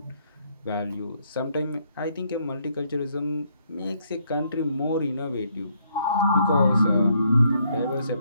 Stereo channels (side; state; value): both; inverted; correlation -0.71